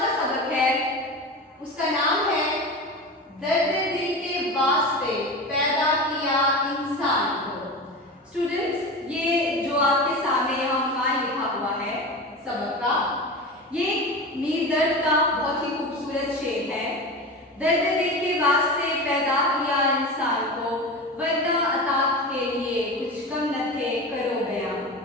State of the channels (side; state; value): both; normal; correlation 0.28